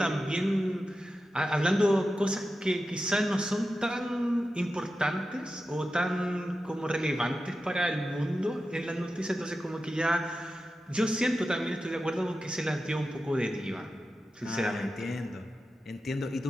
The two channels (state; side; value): normal; both; correlation 0.92